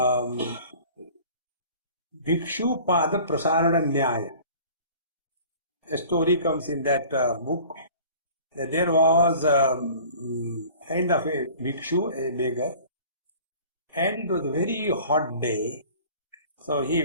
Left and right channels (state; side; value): inverted; both; correlation -0.46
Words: Bhikshu Pada Prasarana Nyaya. A story comes in that book that there was kind of a bhikshu, a beggar, and it was a very hot day. So he